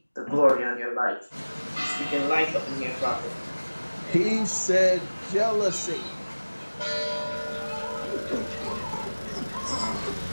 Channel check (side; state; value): both; inverted; correlation -1.00